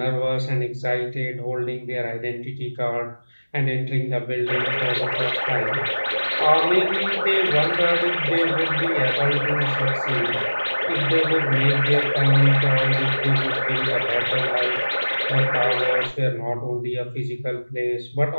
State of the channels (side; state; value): both; inverted; correlation -1.00